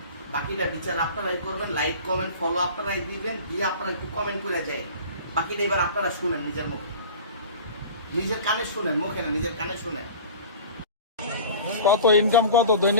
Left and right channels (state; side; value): inverted; both; correlation -0.40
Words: বাকিটা বিচার আপনারাই করবেন, লাইক কমেন্ট ফলো আপনারাই দিবেন, দিয়ে আপনারা একটু কমেন্ট করে যায়। বাকিটা এবার আপনারা শুনেন নিজের মুখে, নিজের কানে শুনেন, মুখে না, নিজের কানে শুনেন। কত ইনকাম কত